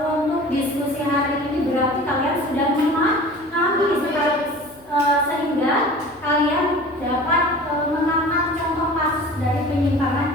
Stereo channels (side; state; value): left; noise; hum, 29 dB below the sound